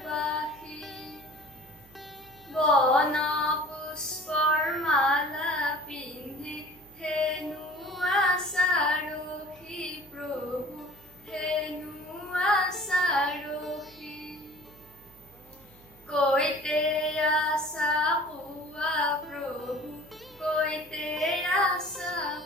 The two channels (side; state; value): right; noise; hum, 25 dB below the sound